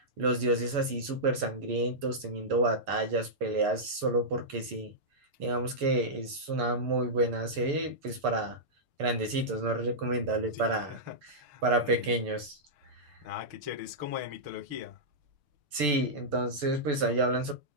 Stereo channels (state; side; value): late; left; 6.8 ms